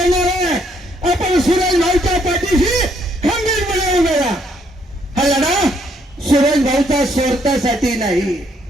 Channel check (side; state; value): both; normal; correlation 0.70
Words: आहे, आपण सुरेश भाऊच्या पाठीशी खंबीरपणे उभे राहा। हा लढा सुरेश भाऊचा स्वार्थासाठी नाही,